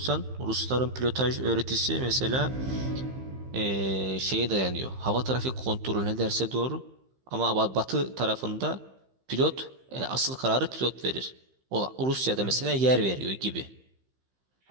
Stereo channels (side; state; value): left; late; 15 ms